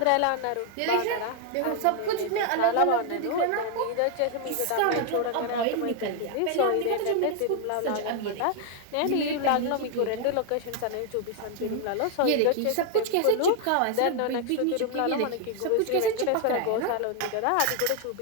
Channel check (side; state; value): both; different; correlation 0.00